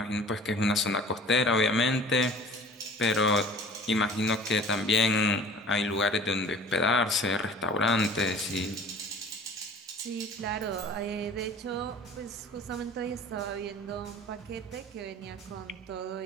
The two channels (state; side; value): normal; both; correlation 0.45